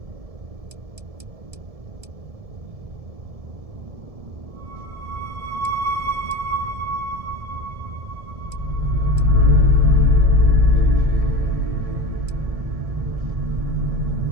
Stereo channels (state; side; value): late; left; 1.7 ms